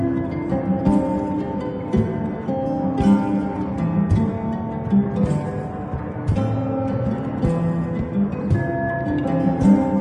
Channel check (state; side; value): identical; both; correlation 1.00